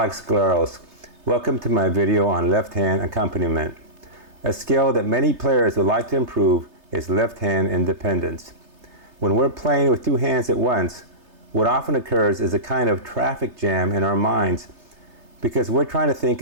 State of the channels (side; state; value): left; late; 3.3 ms